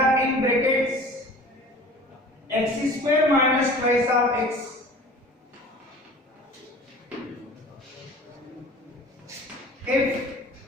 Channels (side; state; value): both; normal; correlation 0.43